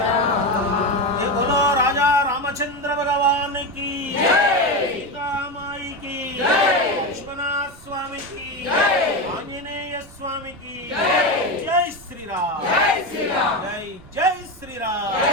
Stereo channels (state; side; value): noise; right; rumble, 22 dB below the sound